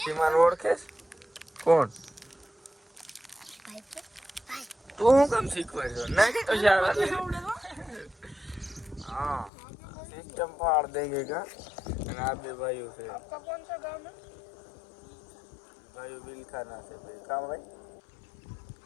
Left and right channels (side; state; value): right; drops out; at 9.5 s